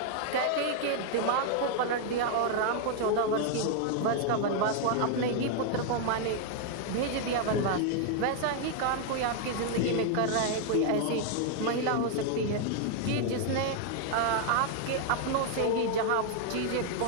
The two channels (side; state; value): both; different; correlation 0.00